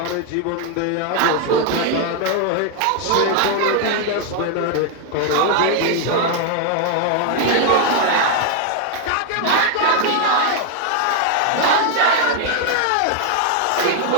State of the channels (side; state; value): both; different; correlation 0.00